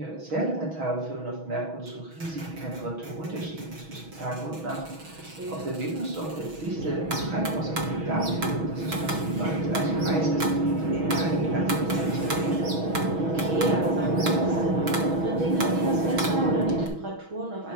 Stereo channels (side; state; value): left; late; 6.2 ms